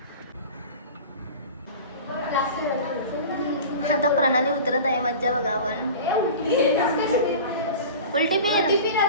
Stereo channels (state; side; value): inverted; both; correlation -0.36